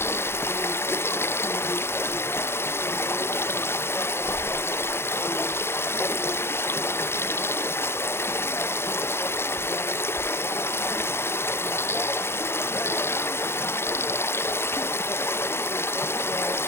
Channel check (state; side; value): late; right; 0.12 ms